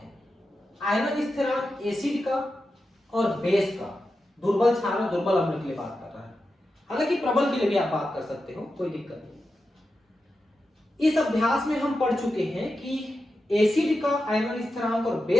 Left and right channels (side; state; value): both; normal; correlation 0.90